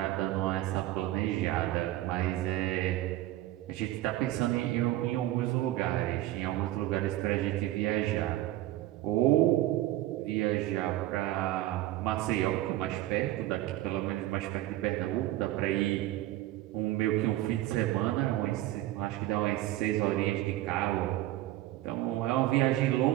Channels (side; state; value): left; quieter; 15.3 dB